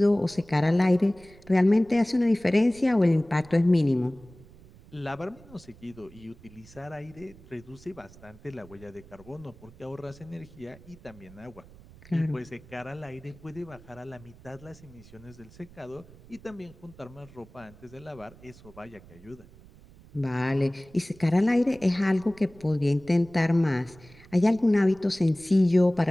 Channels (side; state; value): right; noise; rumble, 22 dB below the sound